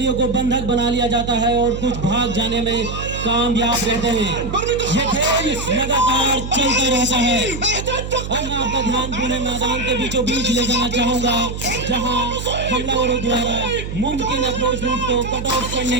को बंधक बना लिया जाता है और कुछ भाग जाने में कामयाब रहते हैं। ये खेल लगातार चलता रहता है। अब मैं आपका ध्यान पूरे मैदान के बीचों बीच ले जाना चाहूंगा, जहां हमलावरों द्वारा मुमकिन अप्रोच रूट को कट ऑफ करने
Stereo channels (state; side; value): noise; right; hum, 7 dB below the sound